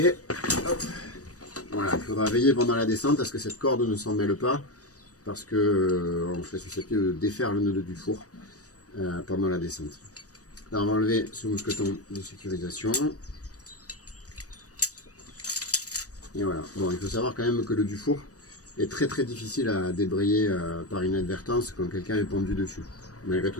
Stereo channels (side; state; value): right; late; 0.66 ms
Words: Hop. Voilà, il faudra veiller pendant la descente à ce que cette corde ne s'en mêle pas, parce qu'on serait susceptible de défaire le nœud du four pendant la descente. Là, on va enlever ce mousqueton de sécurisation. Et voilà. Bon, il faut savoir quand même que le dufour est très difficile à débrayer par inadvertance quand quelqu'un est pendu dessus. Malgré tout,